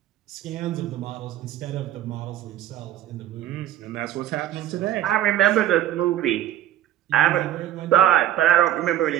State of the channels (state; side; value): quieter; left; 12.2 dB